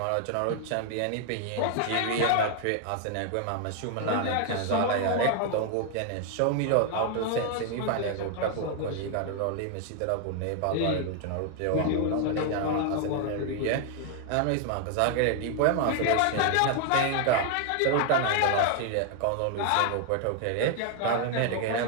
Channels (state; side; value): different; both; correlation 0.00